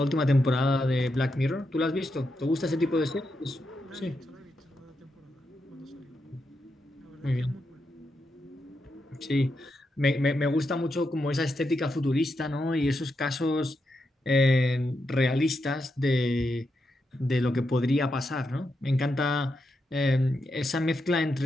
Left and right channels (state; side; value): normal; both; correlation 0.84